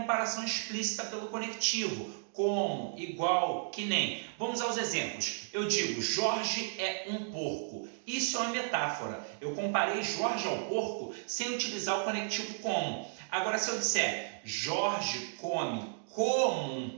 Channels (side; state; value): left; silent; digital silence